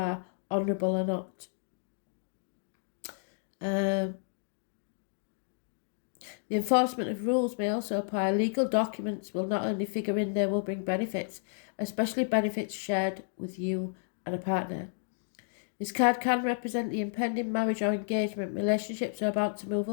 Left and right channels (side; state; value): right; silent; digital silence